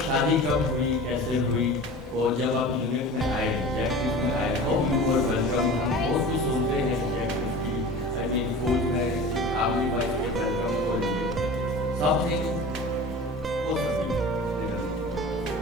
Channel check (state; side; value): normal; both; correlation 0.37